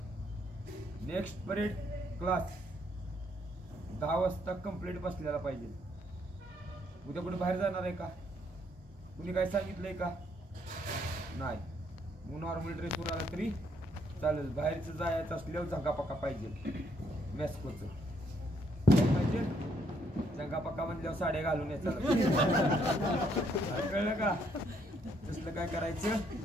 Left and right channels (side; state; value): both; normal; correlation 0.71